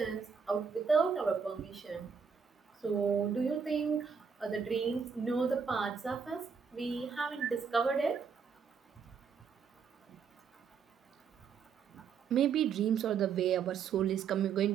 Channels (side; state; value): left; quieter; 6.2 dB